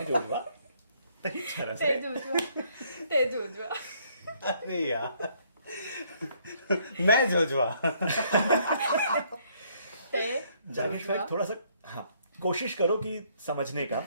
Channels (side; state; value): both; inverted; correlation -0.66